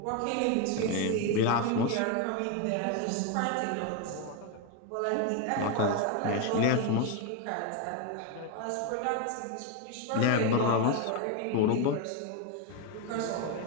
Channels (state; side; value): different; both; correlation 0.02